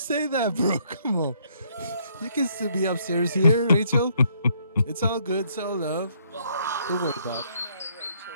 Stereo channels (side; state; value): both; inverted; correlation -0.68